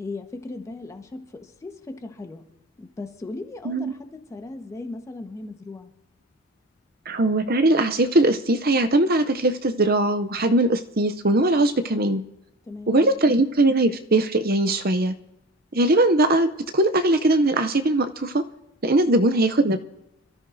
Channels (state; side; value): normal; both; correlation 0.35